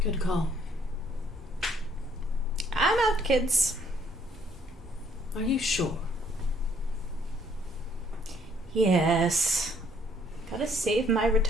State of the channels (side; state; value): both; normal; correlation 0.65